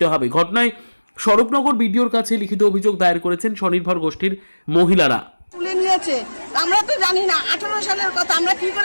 হবে। ঘটনায় স্বরূপনগর বিডিওর কাছে লিখিত অভিযোগ দায়ের করেছেন স্বনির্ভর গোষ্ঠীর মহিলারা। তুলে নিয়েছে, আমরা তো জানি না 18 সালের কথা, আমরা কি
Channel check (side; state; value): both; inverted; correlation -1.00